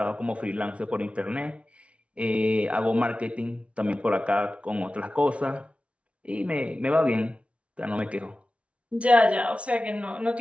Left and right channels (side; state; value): left; late; 0.062 ms